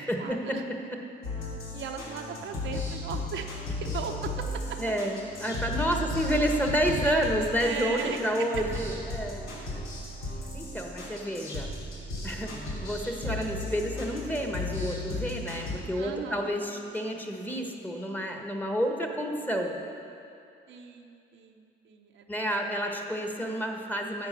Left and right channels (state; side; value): normal; both; correlation 0.59